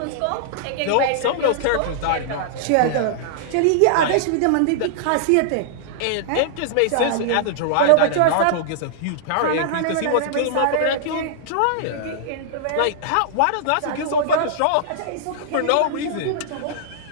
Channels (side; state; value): both; different; correlation -0.01